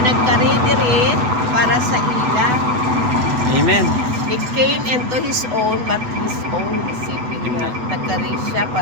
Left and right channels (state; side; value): late; left; 8.1 ms